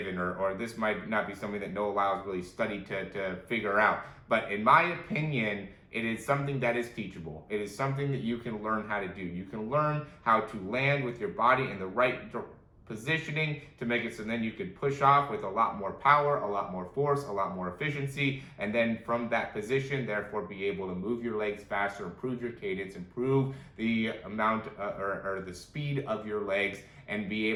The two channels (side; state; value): both; identical; correlation 1.00